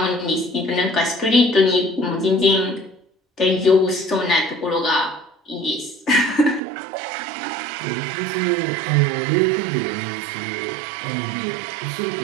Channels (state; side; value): drops out; left; at 6.6 s